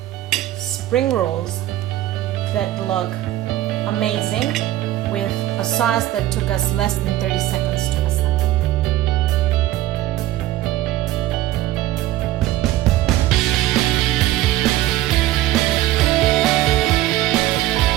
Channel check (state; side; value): quieter; left; 14.9 dB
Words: spring rolls that look amazing with a sauce that took us less than 30 seconds to assemble.